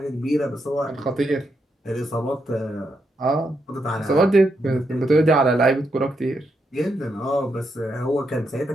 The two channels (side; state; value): both; normal; correlation 0.81